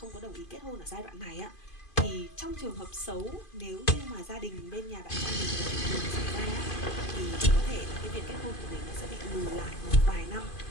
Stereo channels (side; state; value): right; late; 2.5 ms